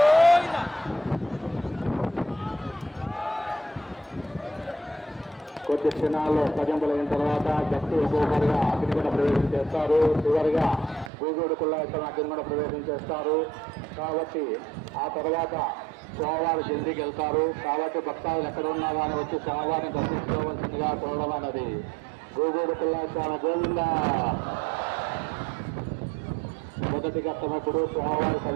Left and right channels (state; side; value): drops out; left; at 11.1 s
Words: కొద్ది క్షణాల్లో భజంపులైన తర్వాత భక్తులు ఒక్కొక్కరుగా అగ్నిగుండ ప్రవేశం చేస్తారు. చివరిగా గోగోడు పుల్లయ్య స్వామి అగ్నిగుండ ప్రవేశం చేస్తారు కాబట్టి ఆ తర్వాత స్వామివారు జల్దీకి వెళ్తారు. కాబట్టి భక్తాదులు ఎక్కడ ఉన్నా కానీ వచ్చి స్వామివారిని దర్శించుకోవాల్సిందిగా కోరడం అన్నది గోగోడు పుల్లయ్య స్వామి గోవింద. మొదటి ఘట్టమప్పుడు స్వామివారి